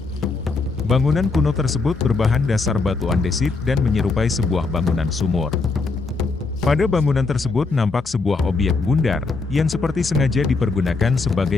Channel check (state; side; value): quieter; right; 4.0 dB